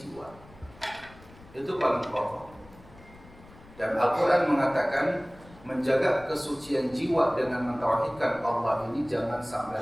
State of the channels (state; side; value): noise; left; rumble, 22 dB below the sound